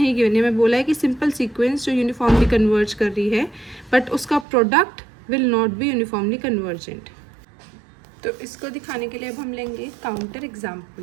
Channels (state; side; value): drops out; left; at 4.5 s